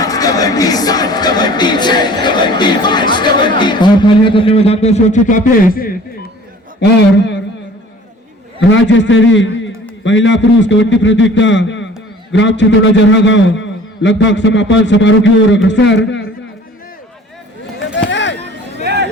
और खाली हाथ अपने मैदान पर सुरक्षित वापस और राज्य स्तरीय महिला पुरुष कबड्डी प्रतियोगिता ग्राम चितौड़ा जरहा गांव लगभग समापन समारोह की ओर अग्रसर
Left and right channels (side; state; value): both; normal; correlation 0.48